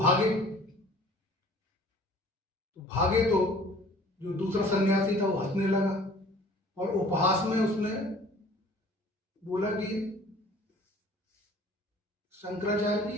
भागे तो जो दूसरा सन्यासी था वो हंसने लगा और उपहास में उसने बोला कि शंकराचार्य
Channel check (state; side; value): normal; both; correlation 0.50